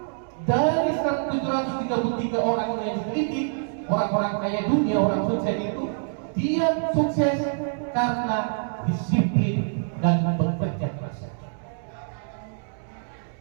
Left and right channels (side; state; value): left; silent; 61 dB below the other